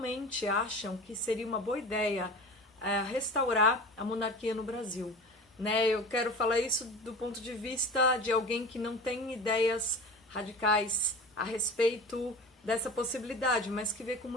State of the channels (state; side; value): normal; both; correlation 0.35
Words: acham que seria uma boa ideia restaurar a monarquia no Brasil. Né? Eu quero falar isso do ponto de vista de alguém que não tem ideias radicais a respeito dessa possibilidade, mas que vê com